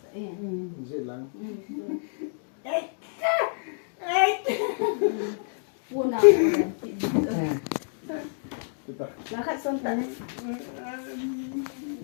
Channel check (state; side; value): silent; right; digital silence